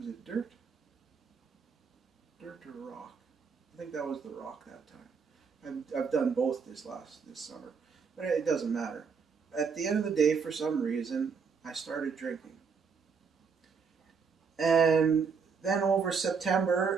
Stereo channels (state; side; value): quieter; left; 5.6 dB